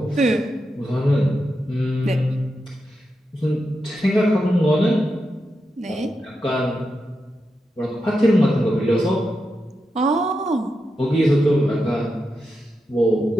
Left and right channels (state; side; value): normal; both; correlation 0.87